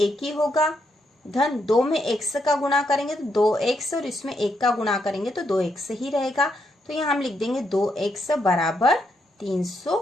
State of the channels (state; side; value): normal; both; correlation 0.79